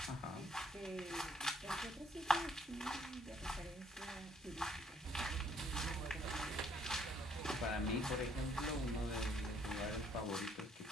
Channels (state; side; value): normal; both; correlation 0.66